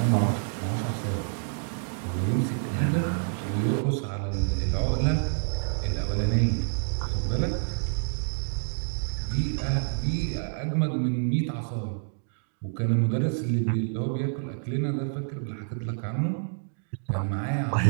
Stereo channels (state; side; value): silent; left; digital silence